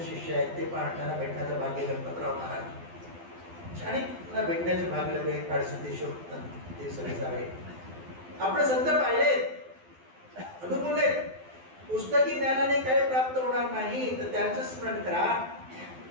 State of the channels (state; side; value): late; left; 12 ms